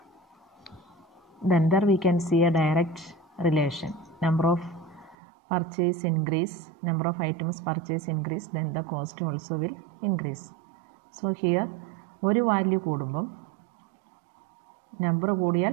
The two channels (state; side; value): drops out; left; at 5.2 s